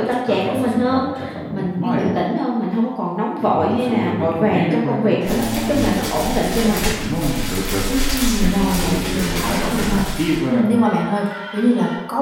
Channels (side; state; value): both; identical; correlation 1.00